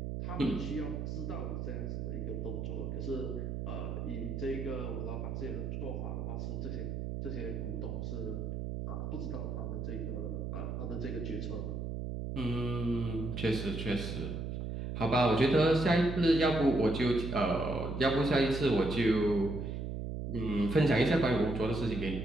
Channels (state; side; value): noise; right; hum, 4 dB below the sound